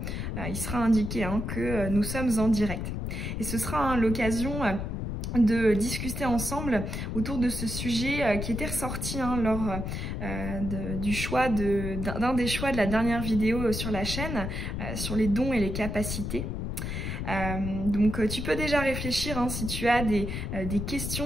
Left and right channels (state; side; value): noise; left; rumble, 4 dB below the sound